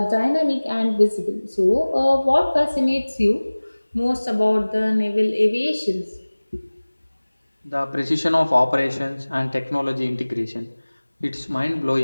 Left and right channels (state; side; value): inverted; both; correlation -1.00